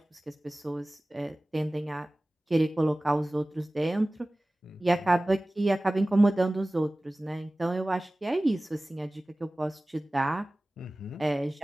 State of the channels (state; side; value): normal; both; correlation 0.98